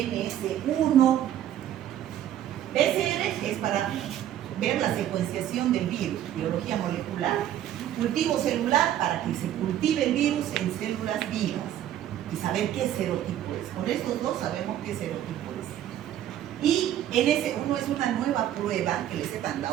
PCR es para ver la secuenciación del virus, biología molecular. Cultivo celular para que se cultive el virus en células vivas y saber qué serotipo es. Con estos dos sabemos qué serotipo es. Y en ese uno es una nueva prueba que les he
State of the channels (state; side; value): quieter; left; 11.5 dB